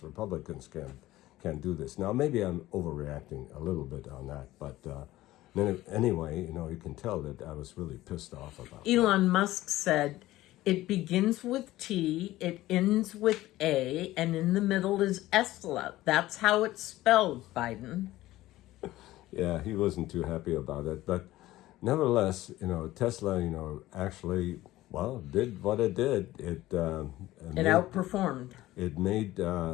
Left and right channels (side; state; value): right; quieter; 16.3 dB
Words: Republicans can't do this. Now, maybe I'm overreacting a little bit on that, but anyway, you know, you can tell that I was really pissed off about Elon Musk said, it begins with T, it ends with A, and in the middle is Esla. That's how it's spelled, Biden. Yeah, he wasn't too happy about it, but nevertheless, you know, Tesla, you know, actually, well, did what it did. It Outperformed. It made